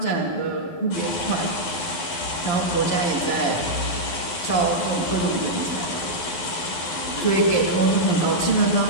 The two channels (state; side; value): late; right; 11 ms